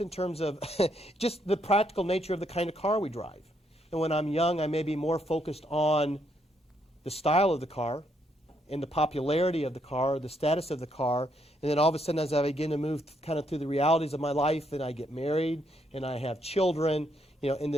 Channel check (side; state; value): both; normal; correlation 0.75